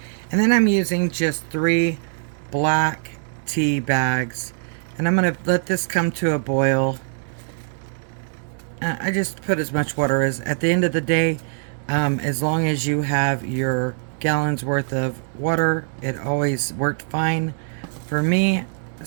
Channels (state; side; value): silent; left; 64 dB below the other